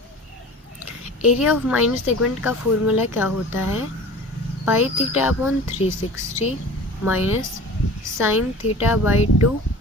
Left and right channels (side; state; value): both; normal; correlation 0.40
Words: Area of minor segment का फॉर्मूला क्या होता है, pi theta upon 360 minus sine theta by 2